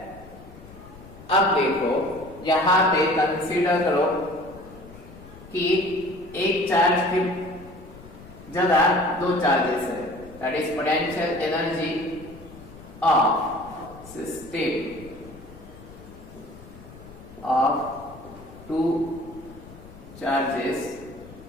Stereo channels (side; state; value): left; noise; rumble, 19 dB below the sound